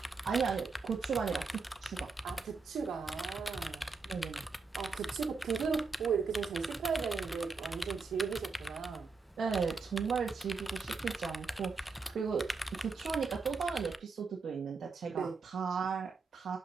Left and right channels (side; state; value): left; quieter; 4.6 dB